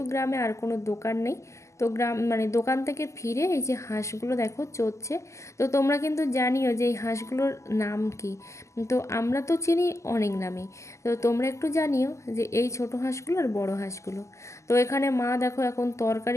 গ্রামে আর কোনো দোকান নেই। তো গ্রাম মানে দোকান থেকে ফিরে এই যে হাঁসগুলো দেখো চড়ছে। তো তোমরা কিন্তু জানিও যে এই হাঁসগুলোর নাম কি। তো আমরা তো চিনি অনেক নামে, তো তোমরা একটু জানিও যে এই ছোট হাঁসগুলো আর বড় হাঁসগুলো। তো এখানে মা দেখো এখন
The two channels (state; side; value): late; right; 0.14 ms